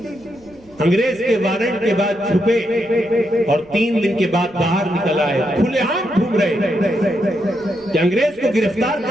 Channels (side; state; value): right; noise; rumble, 28 dB below the sound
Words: انگریز کے وارنٹ کے بعد چھپے اور 3 دن کے بعد باہر نکل آئے، کھلے عام گھوم رہے کہ انگریز کو گرفتار